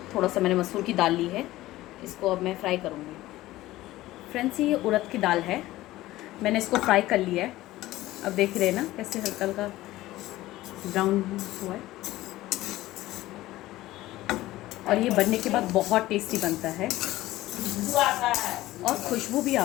थोड़ा सा मैंने मसूर की दाल ली है। इसको अब मैं फ्राई करूँगी। फ्रेंड्स, ये उड़द की दाल है, मैंने इसको फ्राई कर लिया है। अब देख रहे हैं ना कैसे हल्का हल्का ब्राउन हुआ है। और ये बनने के बाद बहुत टेस्टी बनता है और खुशबू भी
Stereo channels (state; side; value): quieter; right; 16.6 dB